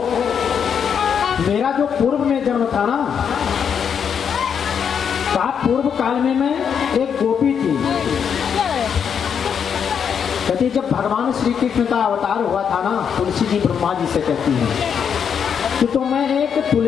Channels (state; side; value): quieter; right; 7.4 dB